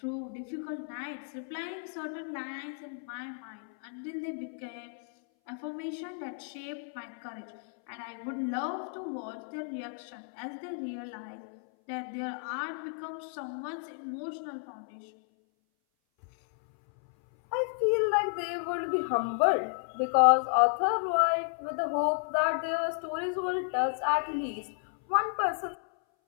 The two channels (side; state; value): right; silent; 56 dB below the other